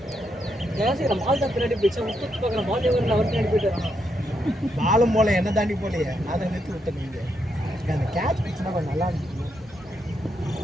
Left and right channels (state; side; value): normal; both; correlation 0.80